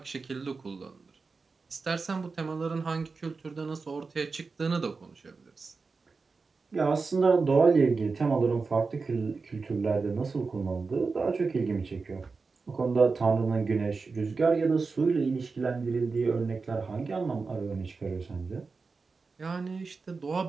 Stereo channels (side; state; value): left; quieter; 4.4 dB